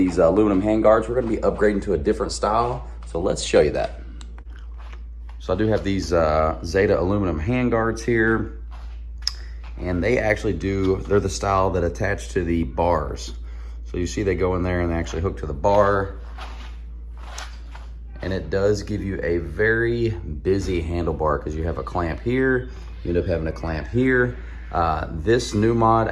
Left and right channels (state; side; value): identical; both; correlation 1.00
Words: aluminum handguards. We're going to be upgrading to a different style, so let's show you that. So I do have these Zeta aluminum handguards here, and they actually they're the style that attach to the bars. So you see they go in there and they actually hook to the bar. And it does give you a very busy handlebar because you have a clamp here, you end up having a clamp here. This new mod